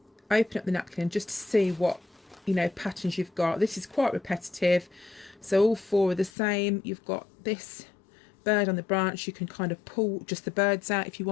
open up the napkin just to see what patterns you've got. This is quite repetitive, so all four are the same. You've got this bird on the branch. You can kind of pull just the birds out if you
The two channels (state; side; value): drops out; right; at 6.3 s